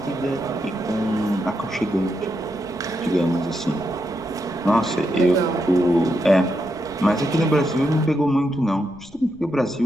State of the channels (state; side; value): noise; right; rumble, 24 dB below the sound